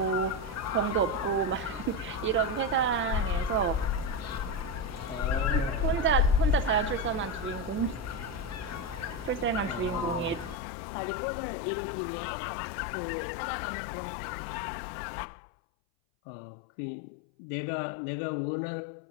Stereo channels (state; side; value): drops out; right; at 10.6 s